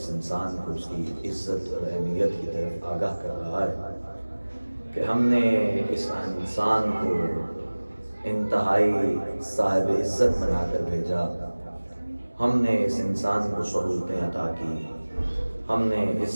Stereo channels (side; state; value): both; inverted; correlation -1.00